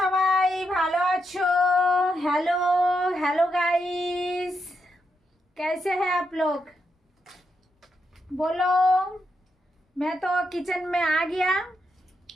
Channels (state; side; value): normal; both; correlation 0.82